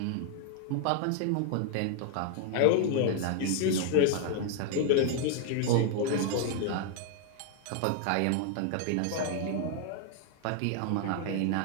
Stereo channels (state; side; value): different; both; correlation 0.00